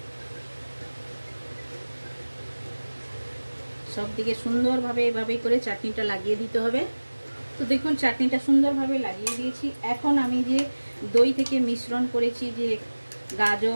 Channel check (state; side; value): inverted; both; correlation -1.00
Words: সব দিকে সুন্দরভাবে এভাবেই করে চাটনিটা লাগিয়ে দিতে হবে। তো দেখুন চাটনিটা সুন্দরভাবে লাগিয়ে দিয়েছি। এখন আমি যে দই থেকে মিশ্রণ করেছি যে